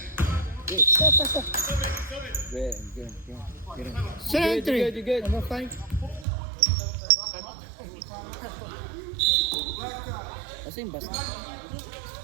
Wait. Pasok. Get Sino entry? You good. Number 5. Kasi yung bus na.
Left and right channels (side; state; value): left; drops out; at 6.2 s